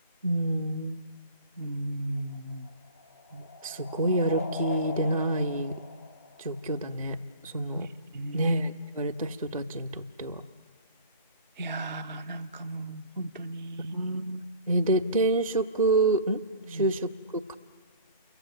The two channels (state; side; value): inverted; both; correlation -0.44